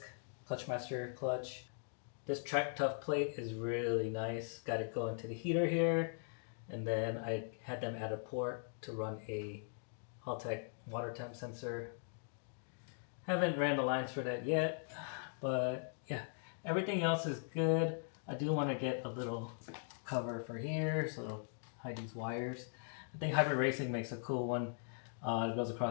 Clutchmaster clutch. This track tough plate is really nice. Got it going to the heater here. And then I had them add a port to run a Haltech water temp sensor. Haven't ran the lines for that yet, but yeah, everything else is good. I do want to get a little cover for here so it'll hide these wires. I think Hybrid Racing makes a cool one. It goes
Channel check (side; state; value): right; silent; digital silence